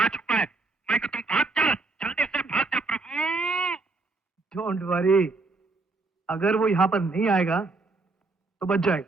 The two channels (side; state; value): left; quieter; 3.6 dB